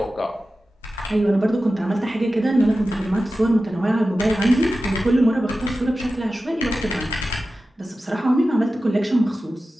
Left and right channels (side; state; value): both; normal; correlation 0.94